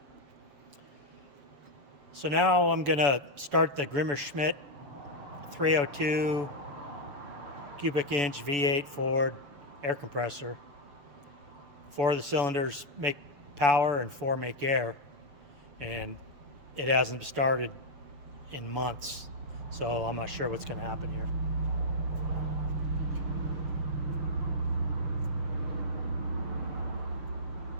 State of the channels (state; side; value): late; left; 7.0 ms